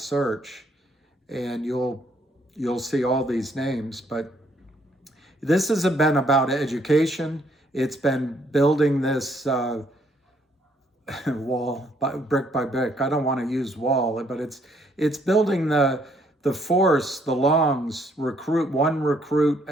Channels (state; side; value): normal; both; correlation 0.68